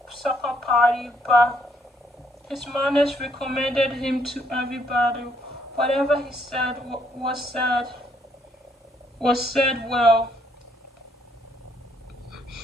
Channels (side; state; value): both; normal; correlation 0.70